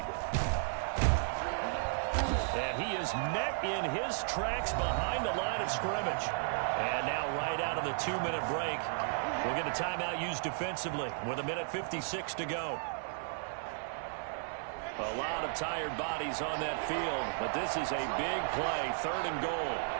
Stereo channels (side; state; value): left; silent; 55 dB below the other